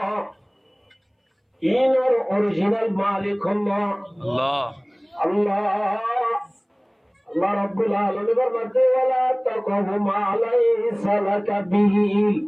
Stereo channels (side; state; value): both; identical; correlation 1.00